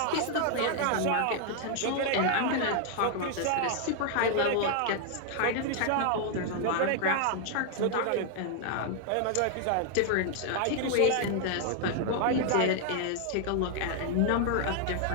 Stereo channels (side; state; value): both; different; correlation 0.00